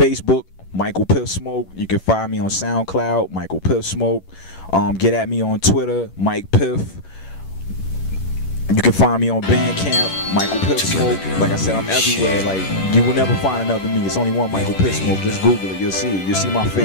Micheal Piffsmoke. You can find me on SoundCloud, Micheal Piffsmoke. Get at me on Twitter, Mike Piff. You can find me on Bandcamp, Micheal Piffsmoke. Like I said, I'm everywhere. Like, you will never find another me. It's only one Micheal Piffsmoke. Just Google it. You'll see it. You'll see my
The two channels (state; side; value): late; right; 11 ms